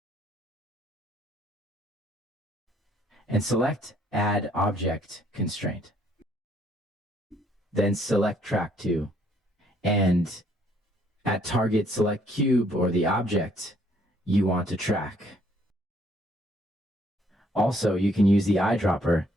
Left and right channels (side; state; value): both; normal; correlation 0.66